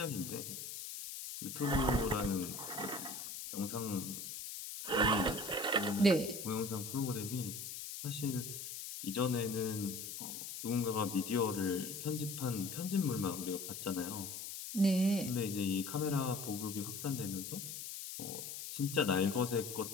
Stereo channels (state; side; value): noise; left; hiss, 7 dB below the sound